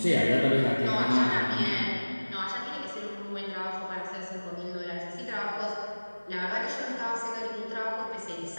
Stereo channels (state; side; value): inverted; both; correlation -1.00